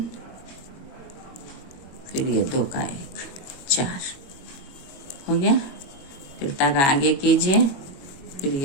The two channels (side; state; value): right; late; 22 ms